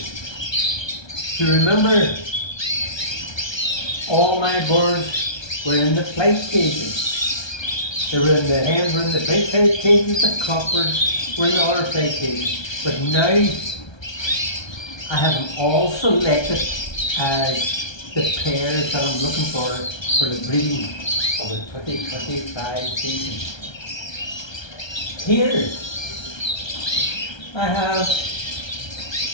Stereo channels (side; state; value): right; late; 1.3 ms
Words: Do you remember all my birds were in the flight cages? They were in the hens were in the big flight cages, the cockbirds were in the other flight cages. But now I have them all selected as the pairs that I'm looking for the breeding of the 2025 season. Here I have